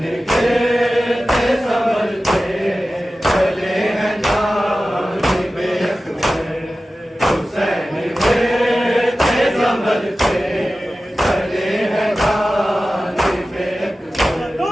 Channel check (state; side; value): normal; both; correlation 0.95